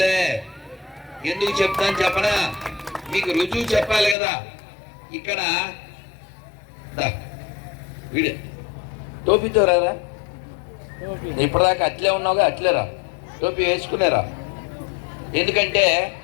ఎందుకు చెప్తాను చెప్పనా? మీకు రుజువు చెప్పాలి కదా. ఇక్కడ వీడు టోపీతో రారా, ఇప్పటిదాకా అట్లే ఉన్నావుగా, అట్లేరా, టోపీ వేసుకునేరా. ఎందుకంటే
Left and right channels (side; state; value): right; drops out; at 4.2 s